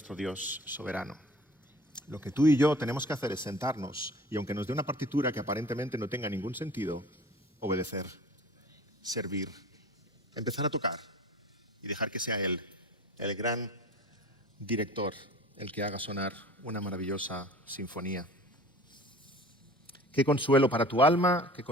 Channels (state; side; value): normal; both; correlation 0.44